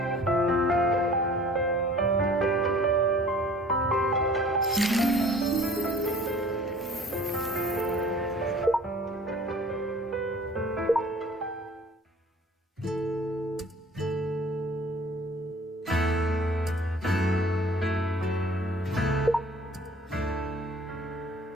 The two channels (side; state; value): both; normal; correlation 0.50